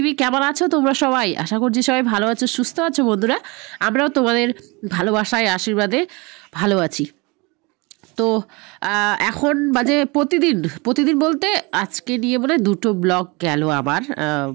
কেমন আছো তোমরা সবাই? আশা করছি সবাই ভালো আছো, সুস্থ আছো বন্ধুরা। আমরাও তোমাদের ভালোবাসায় আশীর্বাদে ভালো আছি। তো এখন বাজে প্রতিদিন বলতে আজকে নিয়ে মানে 2টো ব্লগ গেল আমার।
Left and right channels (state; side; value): quieter; left; 26.9 dB